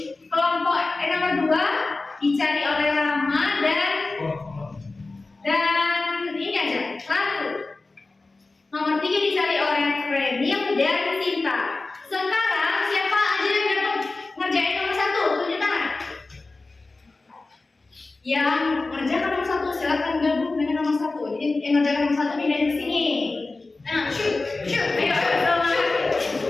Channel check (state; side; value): quieter; right; 3.4 dB